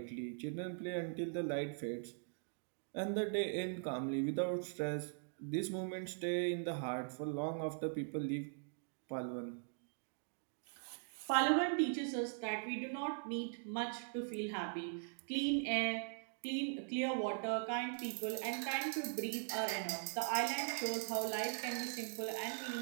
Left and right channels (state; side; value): silent; left; digital silence